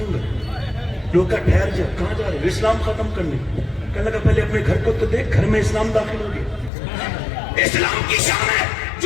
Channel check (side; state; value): right; drops out; at 6.7 s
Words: گا. لوگ کا ٹھہر جا, کہاں جا رہے؟ اسلام ختم کرنے. کہنے لگا پہلے اپنے گھر کو تو دیکھ, گھر میں اسلام داخل ہو گیا. اسلام کی شان ہے